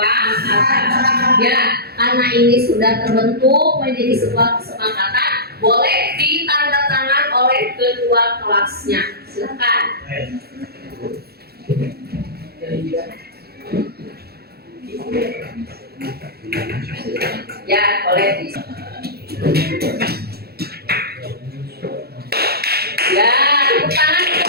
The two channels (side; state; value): left; late; 0.46 ms